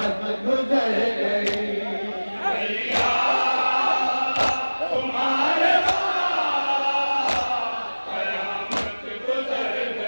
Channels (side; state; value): both; inverted; correlation -1.00